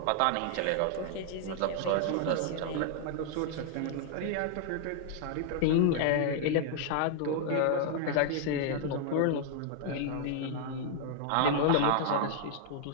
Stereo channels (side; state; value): both; different; correlation -0.01